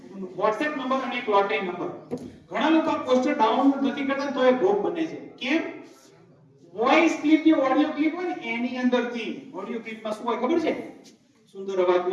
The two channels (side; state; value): both; identical; correlation 1.00